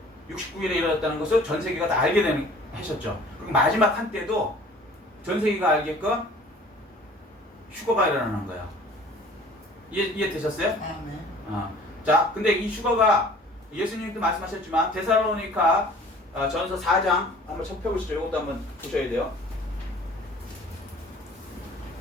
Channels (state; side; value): normal; both; correlation 0.50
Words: 69일에 이루어졌다는 것을 전 세계가 다 알게 되는 하셨죠. 그리고 마지막 한때도 전 세계가 알게끔 휴거가 일어나는 거예요. 이해되셨어요? 자, 근데 이 휴거가 예수님도 말씀하셨지만 데살로니가 전서 4장 한번 펴보시죠. 이것도 한번 보셔야 돼요.